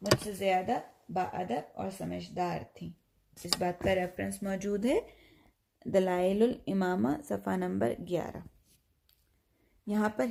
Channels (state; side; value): identical; both; correlation 1.00